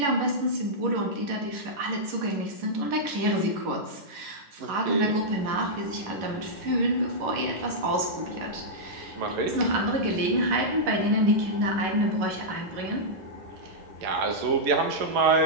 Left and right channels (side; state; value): left; late; 11 ms